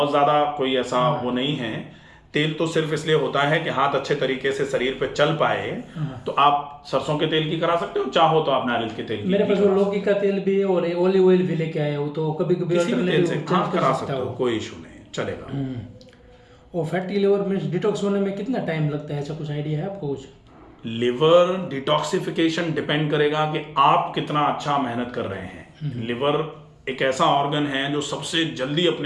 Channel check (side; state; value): both; identical; correlation 1.00